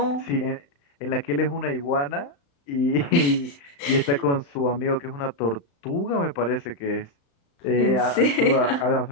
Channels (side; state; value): right; late; 35 ms